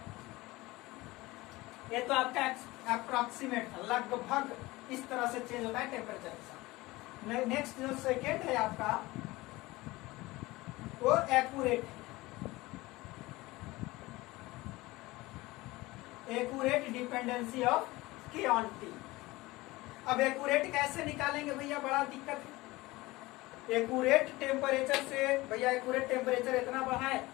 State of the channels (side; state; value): right; quieter; 20.3 dB